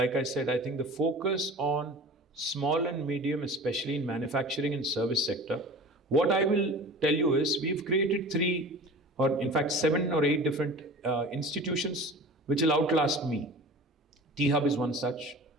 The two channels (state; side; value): normal; both; correlation 0.38